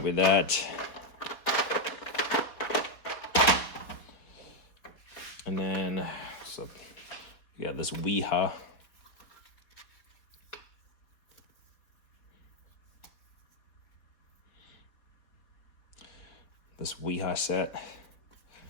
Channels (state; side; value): late; right; 4.2 ms